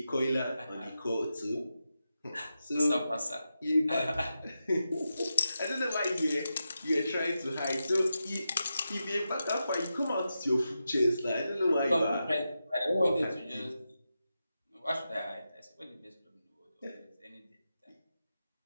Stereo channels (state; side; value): inverted; both; correlation -0.89